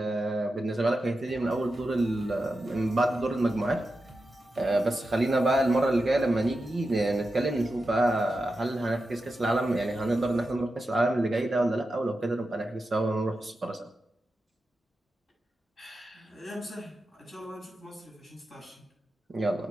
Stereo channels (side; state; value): both; normal; correlation 0.90